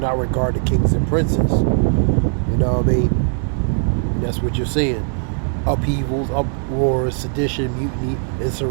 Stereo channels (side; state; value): left; silent; digital silence